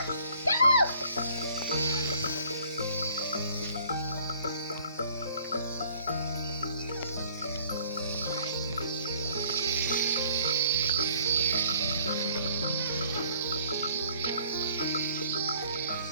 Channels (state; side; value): inverted; both; correlation -0.58